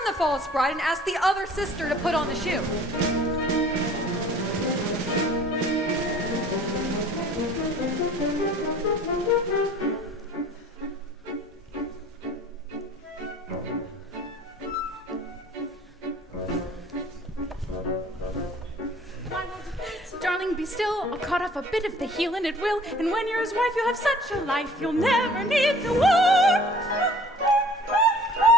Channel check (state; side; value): normal; both; correlation 0.50